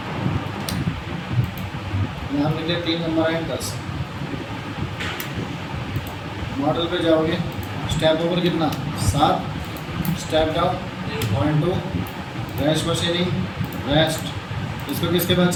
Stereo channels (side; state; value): both; identical; correlation 1.00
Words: नाम लिख लिया, 3 नंबर है 10। मॉडल पे जाओगे, स्टेप ओवर कितना? 7, step down 0.2, rash machining, rest, इसको किसके बाद